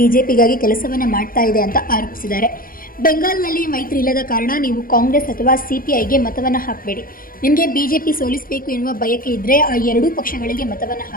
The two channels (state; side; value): late; right; 0.41 ms